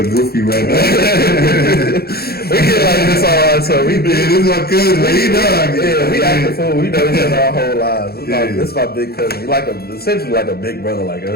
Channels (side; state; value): right; late; 0.46 ms